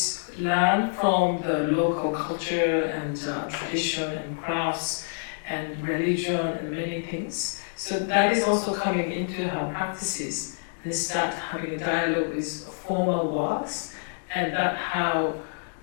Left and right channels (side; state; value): right; silent; digital silence